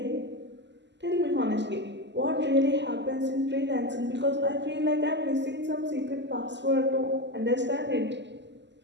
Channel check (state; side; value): late; left; 0.51 ms